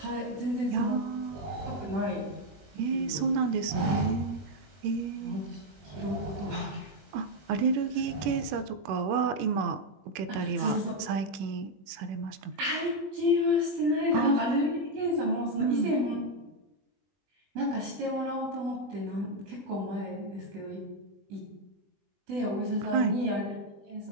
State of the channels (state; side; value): late; left; 21 ms